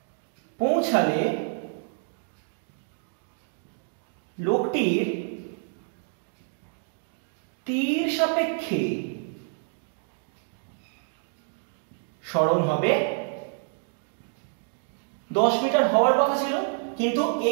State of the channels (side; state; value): left; silent; 59 dB below the other